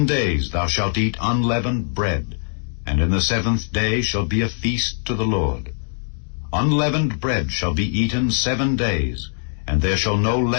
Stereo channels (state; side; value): silent; right; digital silence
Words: days thou shalt eat unleavened bread, and in the 7th day shall be a feast to the Lord. Unleavened bread shall be eaten 7 days, and there shall no